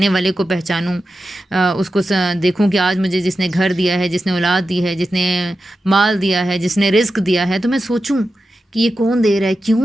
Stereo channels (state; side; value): normal; both; correlation 0.91